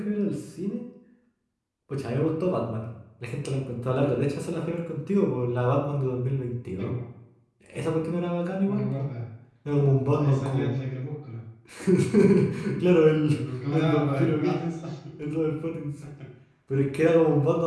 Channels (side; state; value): both; identical; correlation 1.00